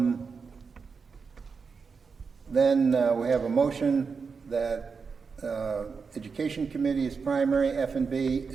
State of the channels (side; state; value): left; quieter; 5.3 dB